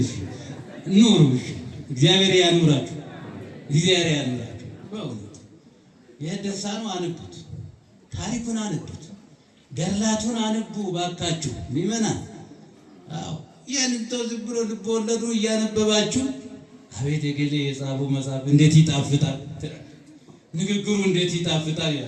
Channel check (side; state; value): both; identical; correlation 1.00